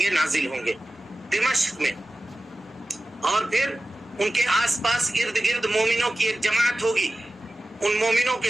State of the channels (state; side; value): normal; both; correlation 0.95